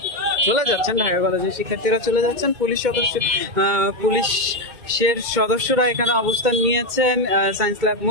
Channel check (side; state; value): left; late; 2.2 ms